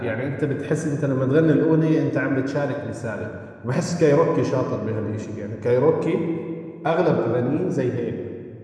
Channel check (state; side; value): identical; both; correlation 1.00